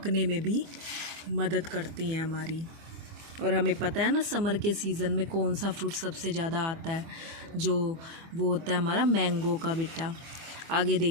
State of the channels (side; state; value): left; late; 25 ms